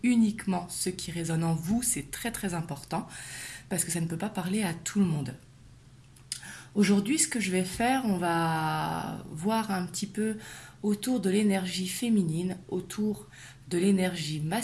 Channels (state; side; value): identical; both; correlation 1.00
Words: uniquement ce qui résonne en vous, c'est très très important parce que ça ne peut pas parler à tout le monde. Aujourd'hui, ce que je vais faire, on va voir un petit peu autour de l'énergie féminine, autour de l'énergie